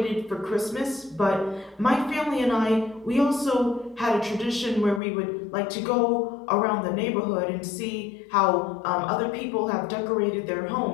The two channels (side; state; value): right; drops out; at 5.0 s